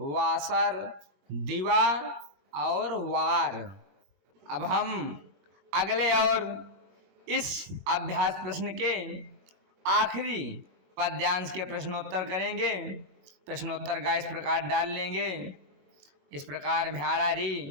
दिवा और वार। अब हम अगले और इस अभ्यास प्रश्न के आखिरी पद्यांश के प्रश्नोत्तर करेंगे। प्रश्नोत्तर का इस प्रकार डाल लेंगे, इस प्रकार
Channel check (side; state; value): left; late; 21 ms